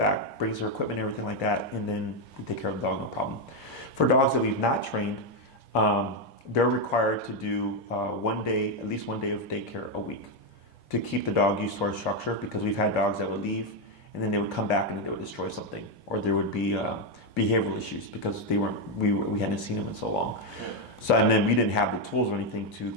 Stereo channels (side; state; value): both; normal; correlation 0.05